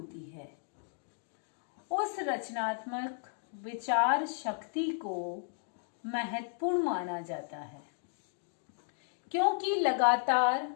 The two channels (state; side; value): silent; right; digital silence